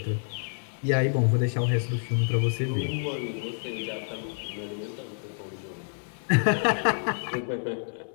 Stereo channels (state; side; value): silent; right; digital silence